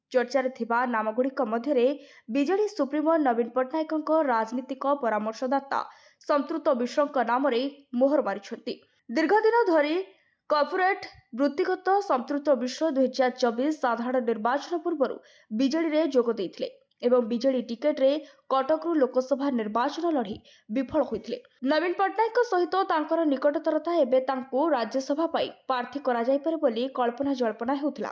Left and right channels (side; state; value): both; identical; correlation 1.00